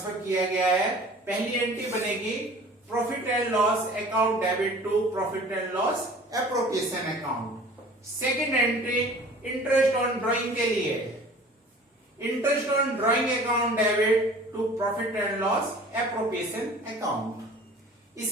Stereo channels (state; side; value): normal; both; correlation 0.46